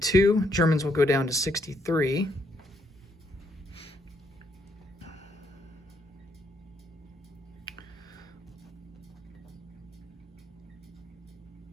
Germans will go down to 63.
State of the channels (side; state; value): both; normal; correlation 0.73